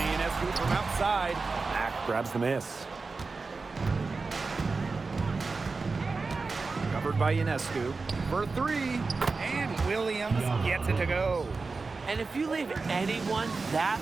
Ionescu from outside. Mack grabs the miss. Covered by Ionescu for 3. And Williams gets it to go. And if you leave anyone that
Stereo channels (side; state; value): left; quieter; 4.1 dB